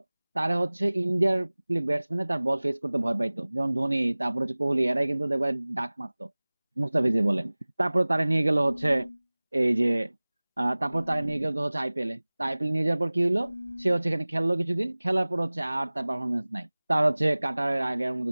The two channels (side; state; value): both; inverted; correlation -1.00